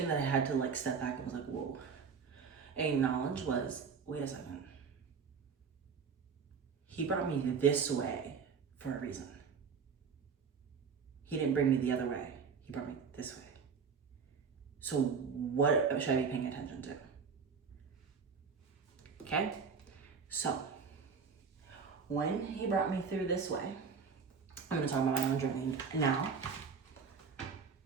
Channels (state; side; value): quieter; left; 5.8 dB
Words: that I had to like step back and was like, whoa, and acknowledge was, wait a second. He brought me this way for a reason. He didn't bring me the other way. He brought me this way. So what should I be paying attention to? Okay? So when he brought me through this way, I'm gonna talk about my own journey now.